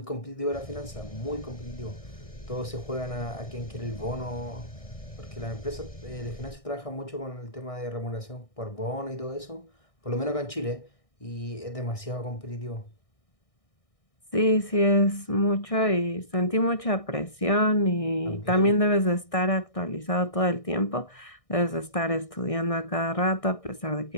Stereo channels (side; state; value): right; late; 1.6 ms